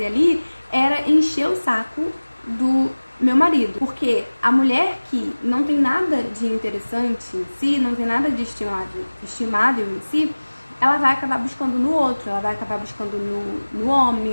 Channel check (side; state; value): both; inverted; correlation -1.00